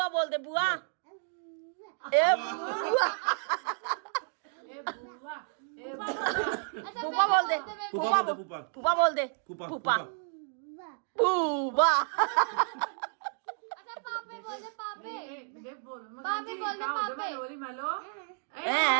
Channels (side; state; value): left; silent; 57 dB below the other